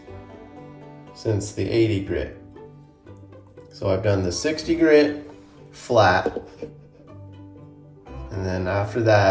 since the 80 grit. So I've done the 60 grit flat, and then after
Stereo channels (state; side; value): identical; both; correlation 1.00